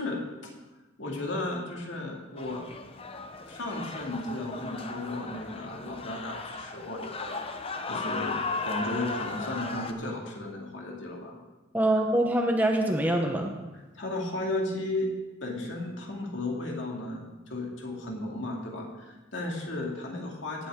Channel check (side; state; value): both; normal; correlation 0.51